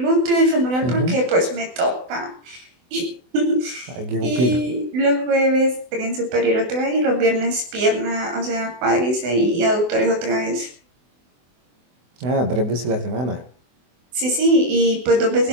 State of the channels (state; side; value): late; left; 24 ms